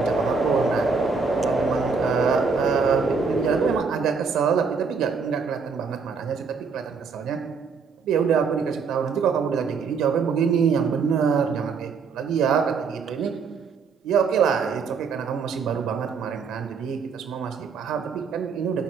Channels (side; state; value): left; quieter; 5.3 dB